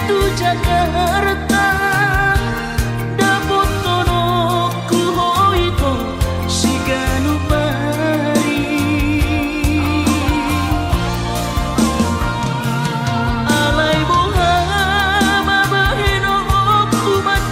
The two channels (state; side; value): identical; both; correlation 1.00